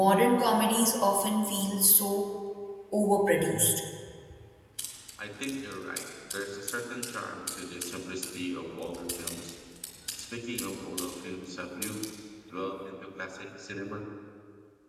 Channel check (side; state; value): both; identical; correlation 1.00